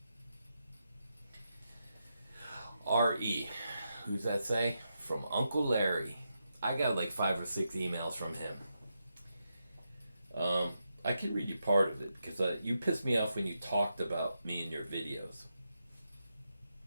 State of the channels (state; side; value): inverted; both; correlation -0.85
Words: R.E. Who's that say? From Uncle Larry. I got like 5 or 6 emails from him. I can read you part of it because you pissed me off when you talked about me in your videos.